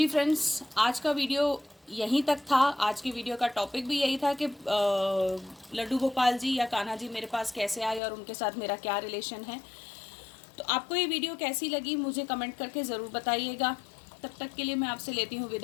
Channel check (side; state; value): right; drops out; at 8.0 s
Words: फ्रेंड्स, आज का वीडियो यहीं तक था। आज की वीडियो का टॉपिक भी यही था कि लड्डू गोपाल जी या कान्हा जी मेरे पास कैसे आए और उनके साथ मेरा क्या रिलेशन है। तो आपको ये वीडियो कैसी लगी मुझे कमेंट करके ज़रूर बताइएगा। तब तक के लिए मैं आपसे लेती हूँ